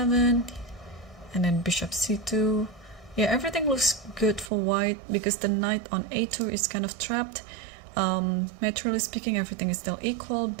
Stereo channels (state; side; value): drops out; left; at 4.5 s